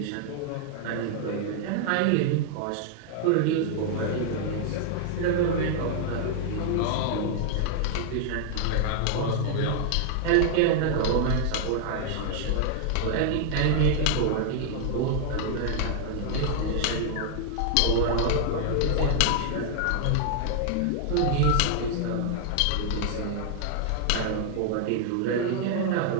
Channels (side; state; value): both; different; correlation -0.01